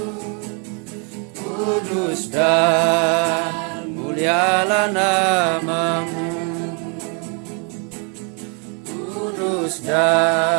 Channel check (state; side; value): quieter; left; 37.3 dB